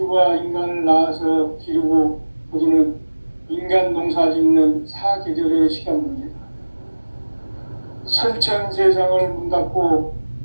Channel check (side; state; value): both; inverted; correlation -1.00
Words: 인간을 낳아서 기르고 거두는 인간 농사 짓는 사계절의 시간 문제다. 선천 세상을 문 닫고